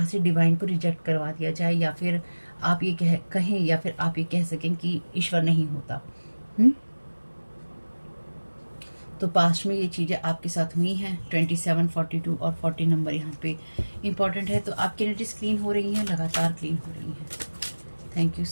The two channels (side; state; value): both; inverted; correlation -1.00